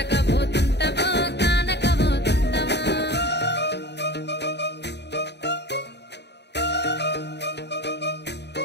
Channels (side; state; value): right; late; 0.50 ms